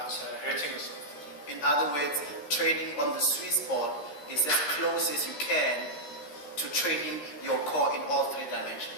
hurting yourself. In other words, training on the sweet spot is as close as you can to training your core in all three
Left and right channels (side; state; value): right; late; 13 ms